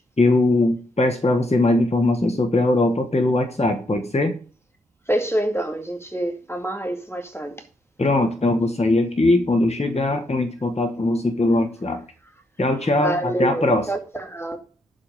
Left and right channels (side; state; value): both; normal; correlation 0.76